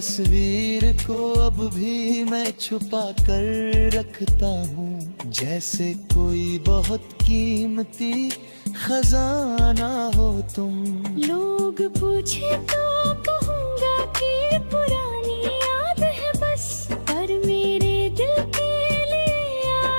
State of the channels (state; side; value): inverted; both; correlation -1.00